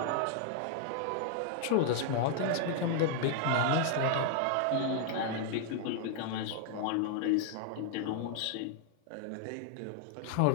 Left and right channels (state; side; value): different; both; correlation 0.00